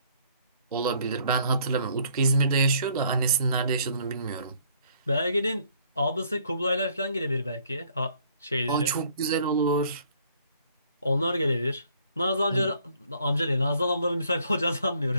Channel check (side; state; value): both; inverted; correlation -0.63